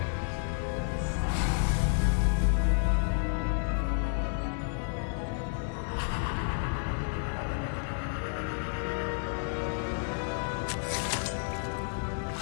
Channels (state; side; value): silent; right; 57 dB below the other